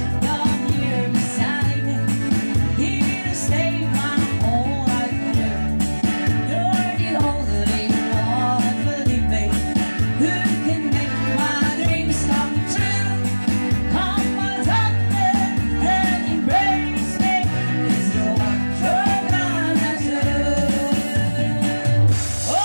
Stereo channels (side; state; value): both; inverted; correlation -1.00